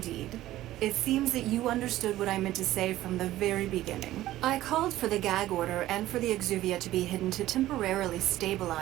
It seems that you understood what I meant to say from the very beginning. I called for the gag order and for the Exuvia to be hidden to temporarily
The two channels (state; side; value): quieter; left; 15.0 dB